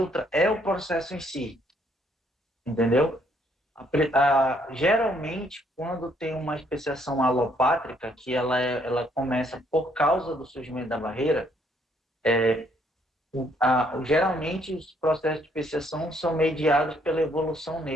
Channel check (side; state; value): both; normal; correlation 0.68